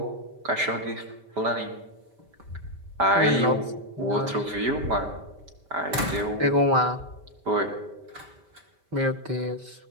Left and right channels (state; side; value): late; left; 5.1 ms